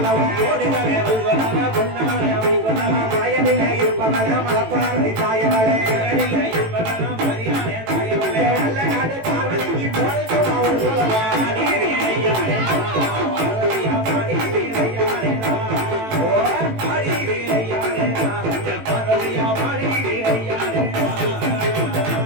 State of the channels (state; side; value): late; left; 18 ms